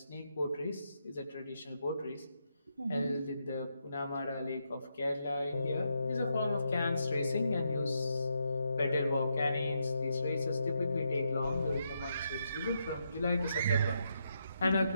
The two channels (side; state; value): both; inverted; correlation -0.81